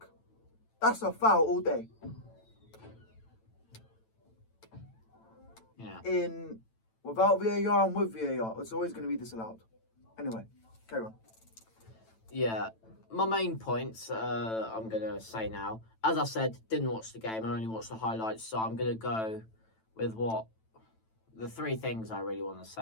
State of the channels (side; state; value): right; late; 9.0 ms